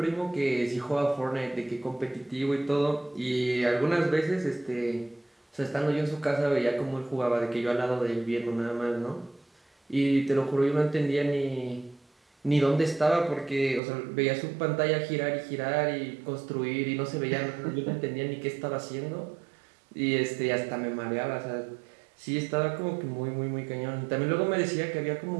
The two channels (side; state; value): left; drops out; at 13.8 s